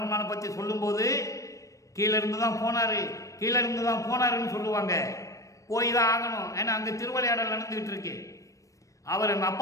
பற்றி சொல்லும்போது கீழே இருந்து தான் போனார், கீழே இருந்து தான் போனாருன்னு சொல்லுவாங்க. போய் தான் ஆகணும். ஏன்னா அங்கே திருவிளையாடல் நடந்துக்கிட்டு இருக்கு. அவர் எங்கள்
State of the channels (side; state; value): right; late; 0.16 ms